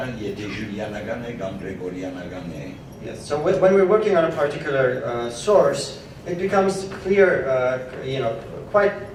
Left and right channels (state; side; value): identical; both; correlation 1.00